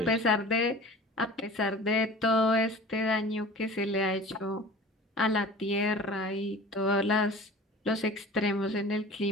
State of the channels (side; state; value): both; normal; correlation 0.40